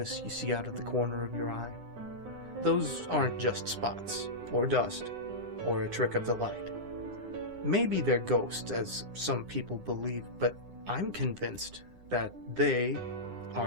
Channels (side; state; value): left; late; 9.8 ms